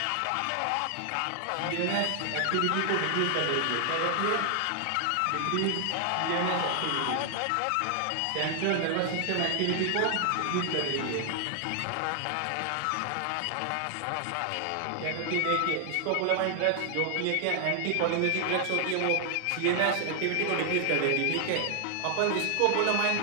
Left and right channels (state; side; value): different; both; correlation 0.00